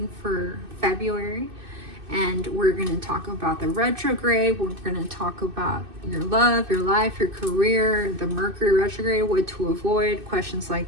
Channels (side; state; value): left; late; 2.6 ms